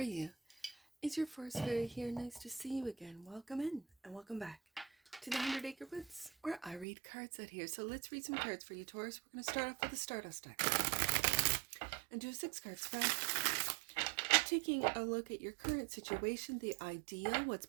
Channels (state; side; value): drops out; left; at 6.9 s